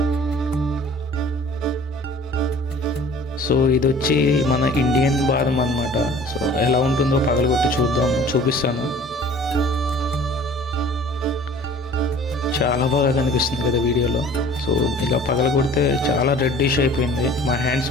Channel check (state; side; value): normal; both; correlation 0.48